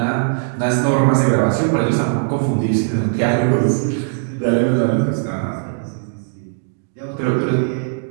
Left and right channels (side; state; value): left; silent; digital silence